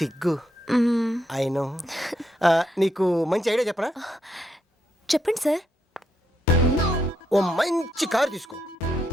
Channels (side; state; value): both; normal; correlation 0.79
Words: I know. నీకు మంచి ఐడియా చెప్పనా? చెప్పండి సార్. ఓ మంచి కారు తీసుకో.